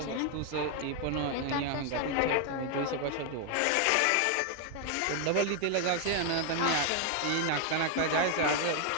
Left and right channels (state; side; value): different; both; correlation 0.01